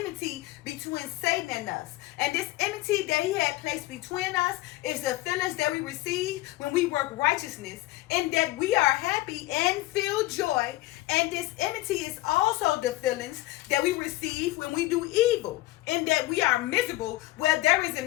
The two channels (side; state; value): right; quieter; 18.2 dB